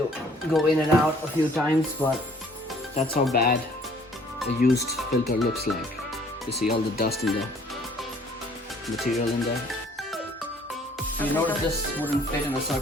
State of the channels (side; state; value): both; normal; correlation 0.58